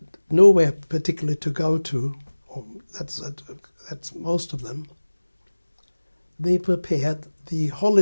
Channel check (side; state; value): both; inverted; correlation -1.00